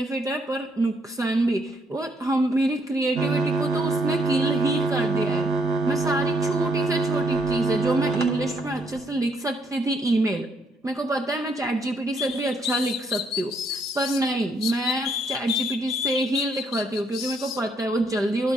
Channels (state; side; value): normal; both; correlation 0.71